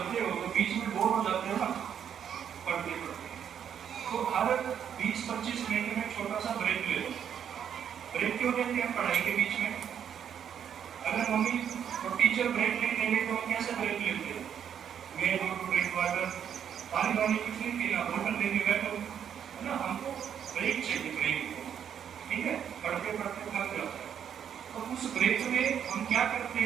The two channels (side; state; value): left; quieter; 8.6 dB